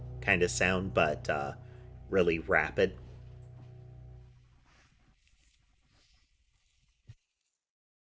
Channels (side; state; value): both; identical; correlation 1.00